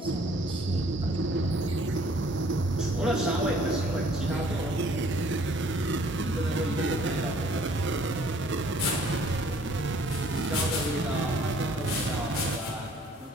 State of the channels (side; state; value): both; normal; correlation 0.58